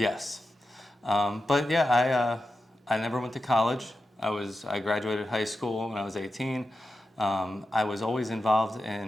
But yeah, I never went to college. I graduated high school when I was 18. I was always involved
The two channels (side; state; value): both; normal; correlation 0.91